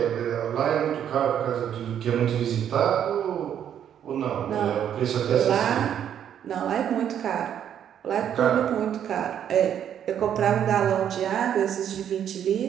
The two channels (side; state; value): left; quieter; 9.5 dB